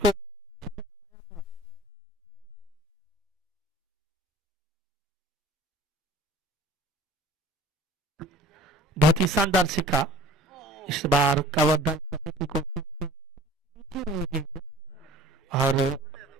बहुत ही शानदार सिक्का। इस बार कवर ड्राइव करने की कोशिश की और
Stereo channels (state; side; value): normal; both; correlation 0.46